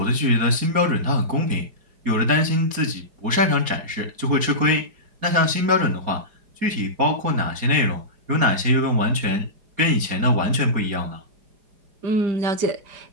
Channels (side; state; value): left; late; 4.8 ms